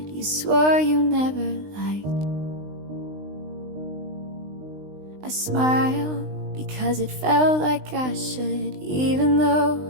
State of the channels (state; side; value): late; left; 20 ms